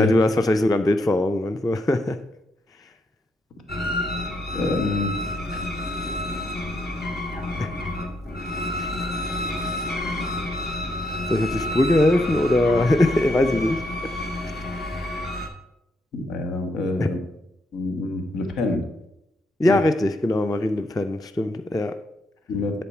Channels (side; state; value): both; normal; correlation 0.78